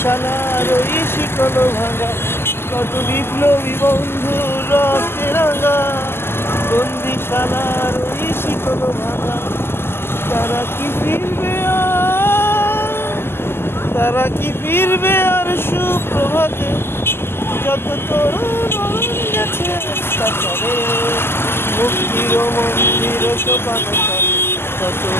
ওই শিকল ভাঙা। কত বিপ্লবী বন্ধু রক্তে রাঙা, বন্দিশালার ওই শিকল ভাঙা। তারা কি ফিরবে আর, তারা কি ফিরবে আর সুপ্রভাতে, যত তরুণ গেছে কাতারে। মুক্তির মন্দির সোপান তলে কত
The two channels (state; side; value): late; right; 0.12 ms